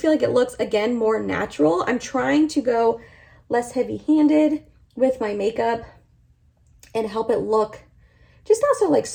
feel like it looks, again, more natural. I'm trying to go less heavy-handed with my makeup and help it look just not so like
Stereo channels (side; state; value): both; identical; correlation 1.00